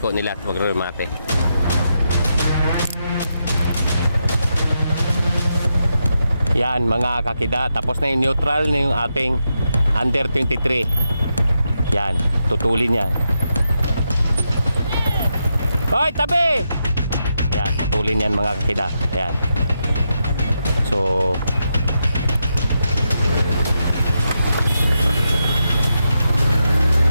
nila at pag-remate. Yan mga kakida, tapos na yung neutral na yung ating under 23. Yan, tutulin yan. Hoy, tabi! Yan, tutulin yan mga kakida. Yan. So,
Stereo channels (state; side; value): inverted; both; correlation -0.85